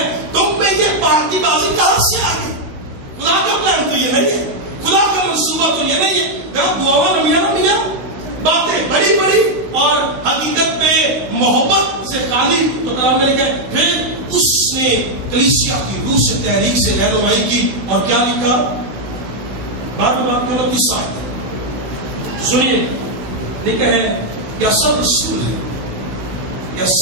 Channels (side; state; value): left; late; 15 ms